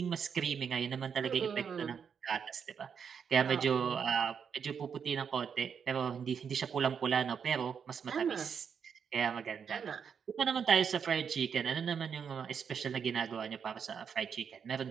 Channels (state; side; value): quieter; left; 7.0 dB